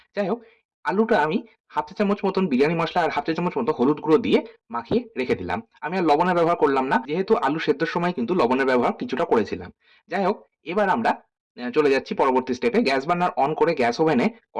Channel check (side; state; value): both; identical; correlation 1.00